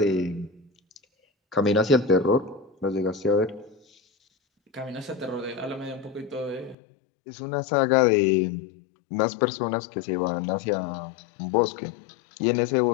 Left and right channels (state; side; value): drops out; right; at 6.8 s